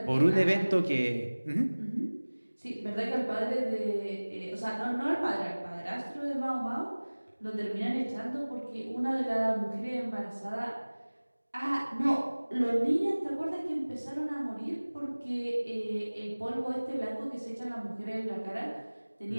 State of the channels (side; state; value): both; inverted; correlation -1.00